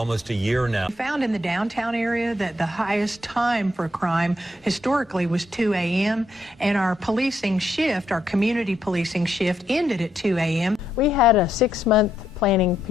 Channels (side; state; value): both; normal; correlation 0.78